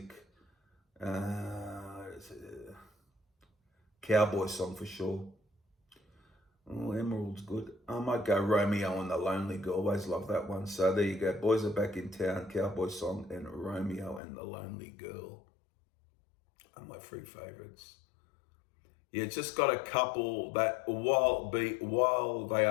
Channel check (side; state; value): right; drops out; at 14.2 s